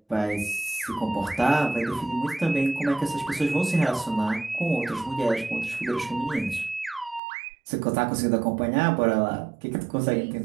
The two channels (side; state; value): left; drops out; at 7.2 s